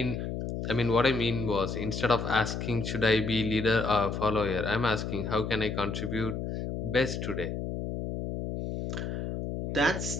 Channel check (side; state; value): left; noise; hum, 4 dB below the sound